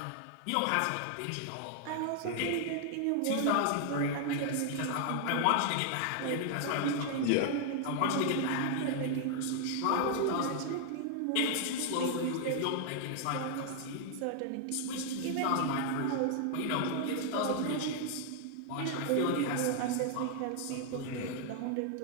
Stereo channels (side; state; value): both; different; correlation 0.00